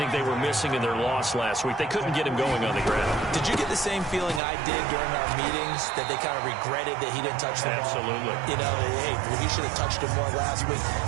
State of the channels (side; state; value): left; drops out; at 4.4 s